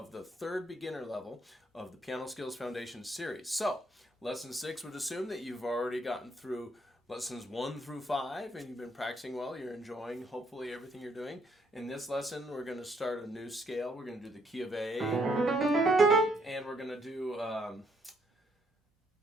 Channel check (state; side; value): normal; both; correlation 0.71